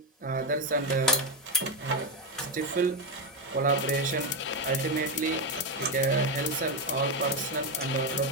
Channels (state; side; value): normal; both; correlation 0.08